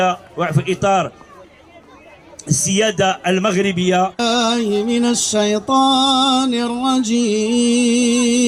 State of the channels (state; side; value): identical; both; correlation 1.00